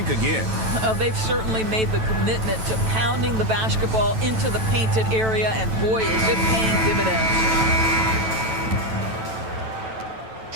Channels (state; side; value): late; left; 9.1 ms